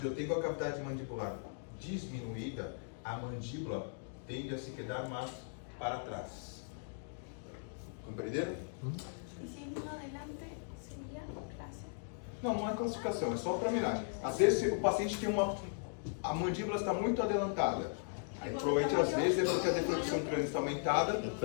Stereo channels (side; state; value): right; silent; digital silence